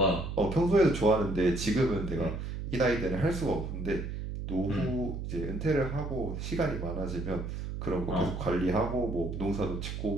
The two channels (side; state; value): right; noise; hum, 5 dB below the sound